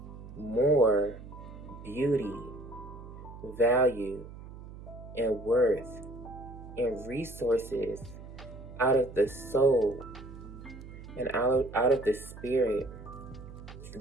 more beauty, value, and worth and resources out of the soul and out of the spirit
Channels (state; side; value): noise; right; hum, 14 dB below the sound